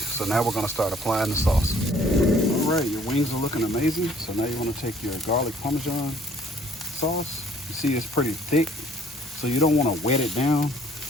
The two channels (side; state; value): both; normal; correlation 0.58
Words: now we're gonna start applying the sauce. All right, your wings are looking amazing. So now you wanna take your garlic Parmesan sauce. You see it's pretty thick, so you don't wanna wet it down.